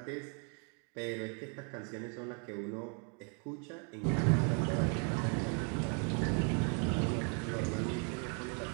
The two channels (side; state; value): left; quieter; 39.1 dB